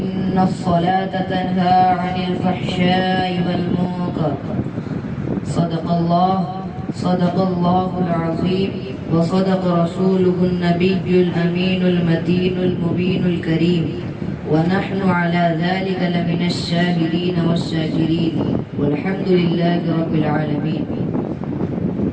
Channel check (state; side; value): identical; both; correlation 1.00